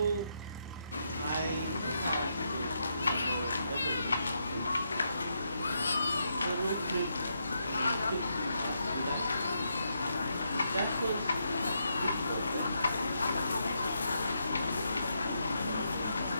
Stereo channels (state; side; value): inverted; both; correlation -0.80